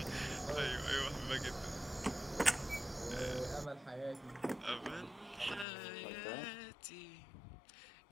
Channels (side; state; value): right; drops out; at 5.7 s